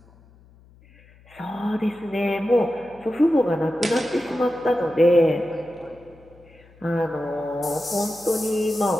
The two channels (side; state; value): left; noise; hum, 27 dB below the sound